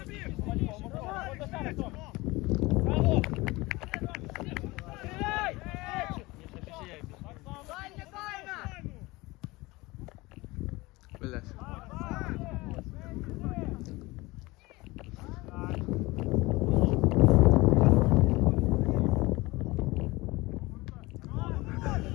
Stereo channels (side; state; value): right; quieter; 21.8 dB